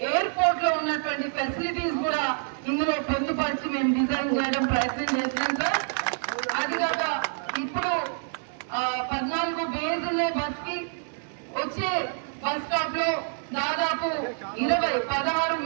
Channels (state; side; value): silent; left; 60 dB below the other